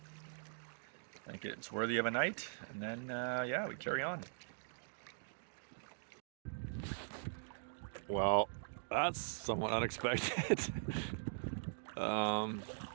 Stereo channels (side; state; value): left; silent; digital silence